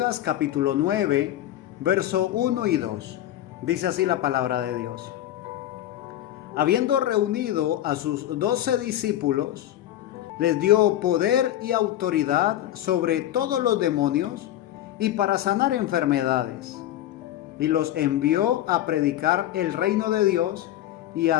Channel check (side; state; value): right; quieter; 12.9 dB